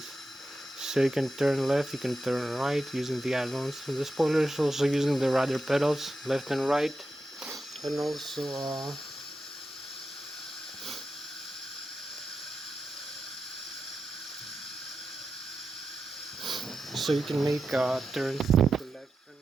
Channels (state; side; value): normal; both; correlation 0.90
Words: So you can turn left, you can turn right using the ailerons and the spoilers, also using the rudder pedals left and right, and also so you can make turns to the left and